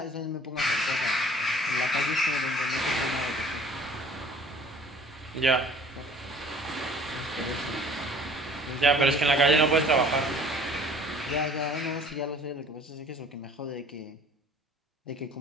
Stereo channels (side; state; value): both; normal; correlation 0.51